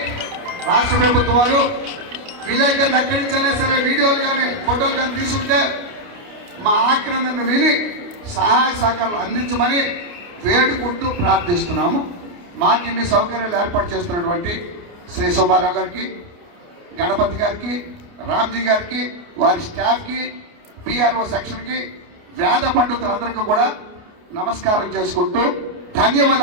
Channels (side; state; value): left; late; 29 ms